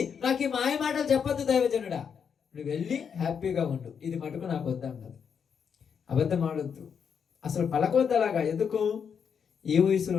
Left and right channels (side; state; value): right; quieter; 7.0 dB